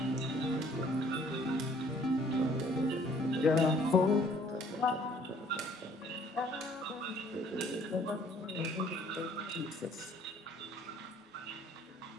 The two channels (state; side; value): normal; both; correlation 0.59